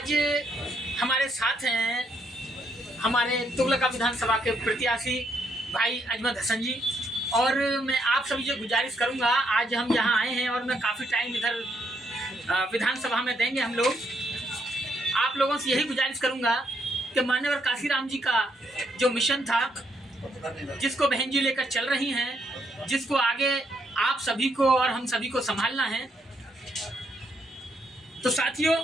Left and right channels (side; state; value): both; normal; correlation 0.74